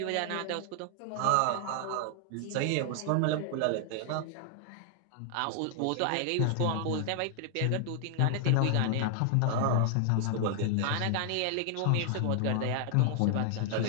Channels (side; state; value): both; different; correlation 0.00